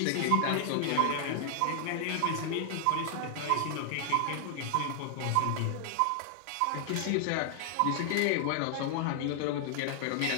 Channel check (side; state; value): both; different; correlation 0.00